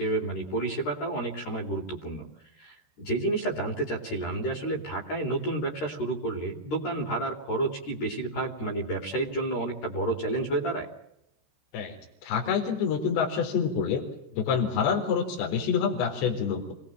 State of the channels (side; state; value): right; late; 13 ms